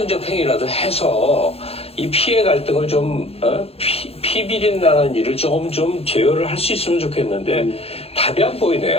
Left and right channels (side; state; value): right; late; 0.29 ms